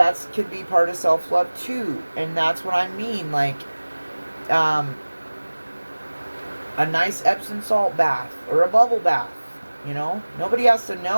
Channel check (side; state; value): both; inverted; correlation -1.00